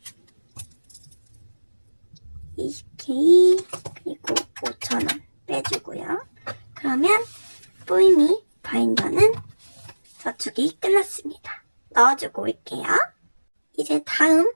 20K 그리고 5,000원 빼주고요. 그러면 뿌이미 바인더는 저축이 끝났습니다. 넣어주고 올게요. 이제 다음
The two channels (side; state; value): both; inverted; correlation -1.00